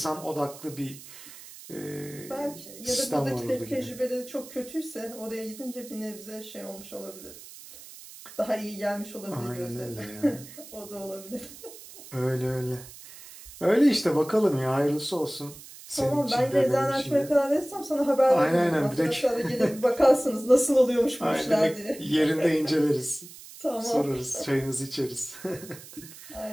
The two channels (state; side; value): noise; right; hiss, 17 dB below the sound